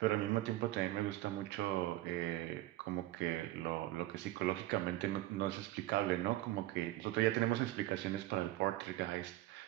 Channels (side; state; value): left; quieter; 16.2 dB